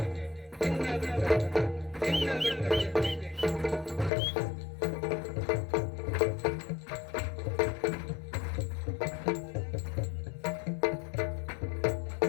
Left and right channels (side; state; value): right; drops out; at 4.1 s